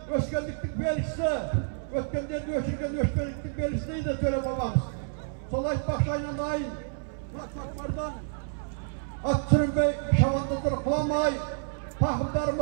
öskelliklik belgisi. Ötkenlerde öşürgen, öşkelliklik belgisi de söyle babamız. Solay bakşayla layın. Muratmaklardan at sürünbey şavandızdır kılamay. Tahımları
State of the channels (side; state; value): left; silent; 59 dB below the other